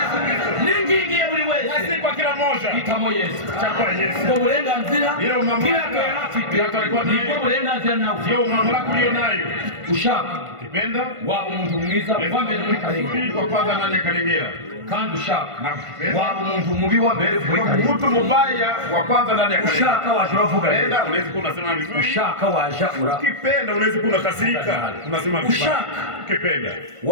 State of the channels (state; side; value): late; left; 1.5 ms